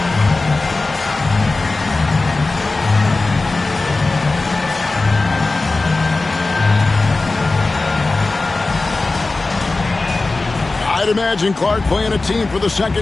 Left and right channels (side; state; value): right; quieter; 3.4 dB